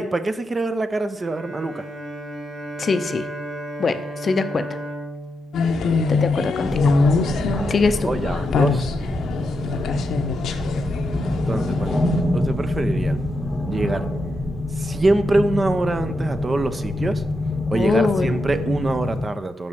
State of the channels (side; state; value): both; normal; correlation 0.85